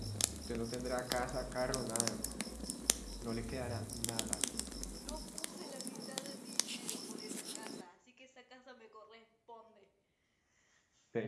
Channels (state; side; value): identical; both; correlation 1.00